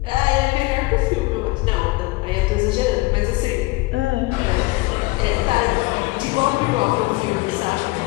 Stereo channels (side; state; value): right; quieter; 22.3 dB